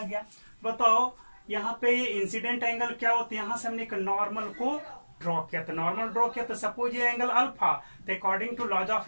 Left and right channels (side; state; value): both; inverted; correlation -1.00